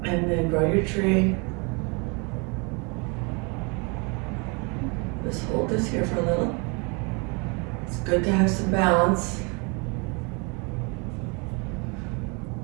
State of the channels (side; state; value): left; quieter; 31.8 dB